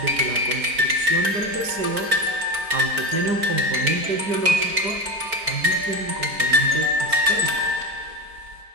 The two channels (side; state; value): left; late; 4.4 ms